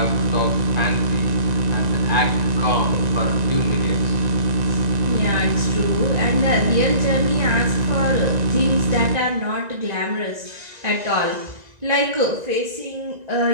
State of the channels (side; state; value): left; late; 1.9 ms